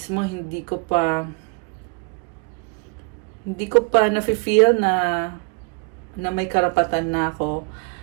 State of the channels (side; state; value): left; quieter; 32.8 dB